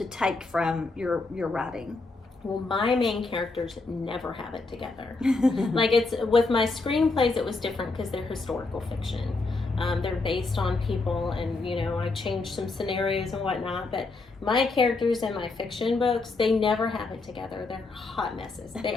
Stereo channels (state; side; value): quieter; right; 3.6 dB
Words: take from your writing? Well, my main characters never have it together. Like, it's with my screenplays, it was different because they're historical fiction. They're based on people, and, you know, I changed some scenarios and whatnot, but my characters in my fiction books, they never have it together. They're hot messes. They